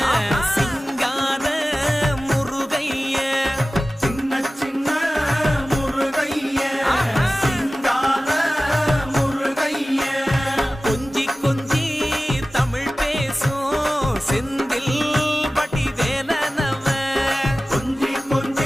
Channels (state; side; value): normal; both; correlation 0.97